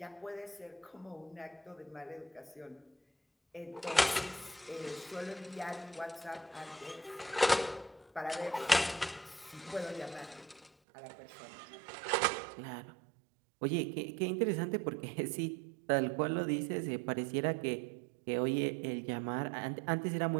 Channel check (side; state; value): left; drops out; at 10.7 s